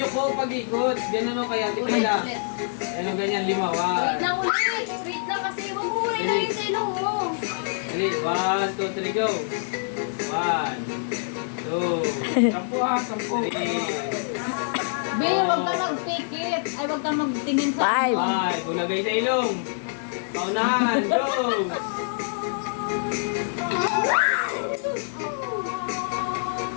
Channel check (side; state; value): right; silent; 61 dB below the other